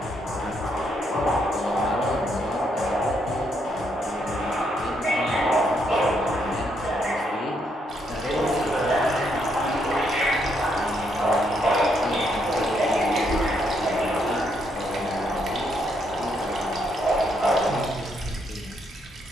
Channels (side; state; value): both; normal; correlation 0.75